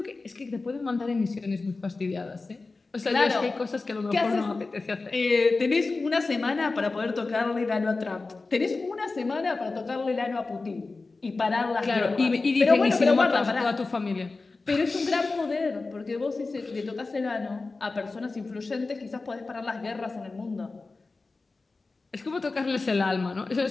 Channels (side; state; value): right; quieter; 3.7 dB